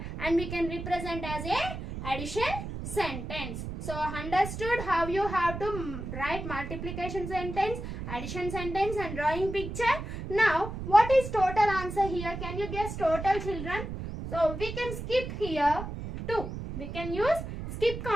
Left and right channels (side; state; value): right; noise; rumble, 7 dB below the sound